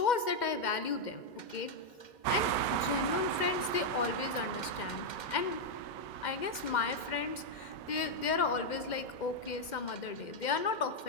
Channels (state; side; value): late; right; 2.1 ms